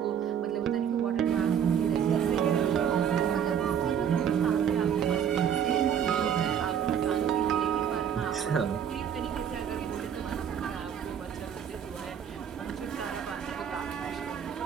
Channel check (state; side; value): quieter; left; 8.5 dB